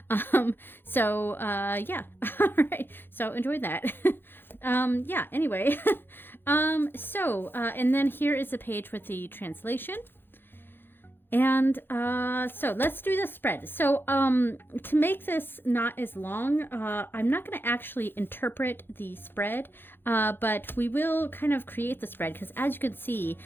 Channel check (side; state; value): right; late; 0.10 ms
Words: so yeah. All right, so enjoy that. Yeah, anyway. And then here is a page with the translation. And so let's do the spread. So to make this not as long, I'm not going to actually interpret the spread, but we will kind of create the spread, because as you can see,